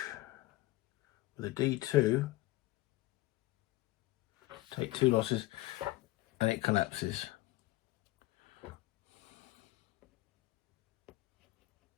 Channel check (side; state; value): right; quieter; 18.7 dB